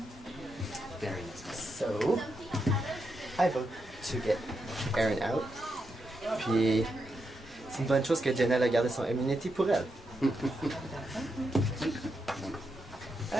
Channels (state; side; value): normal; both; correlation 0.84